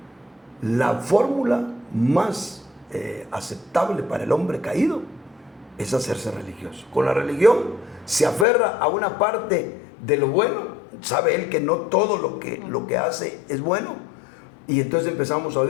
La fórmula más aceptable para el hombre caído es hacerse religioso. Con la religión se aferra a una parte de lo bueno, sabe él que no todo lo que hace es bueno, y entonces empezamos a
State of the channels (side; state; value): right; drops out; at 8.5 s